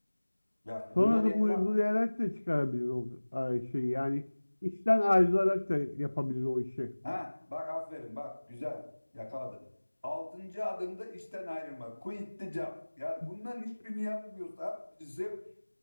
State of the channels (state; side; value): inverted; both; correlation -1.00